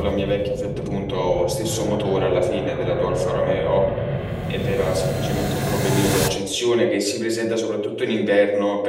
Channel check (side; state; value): both; identical; correlation 1.00